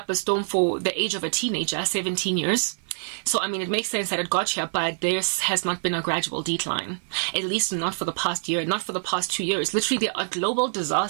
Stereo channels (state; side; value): silent; left; 56 dB below the other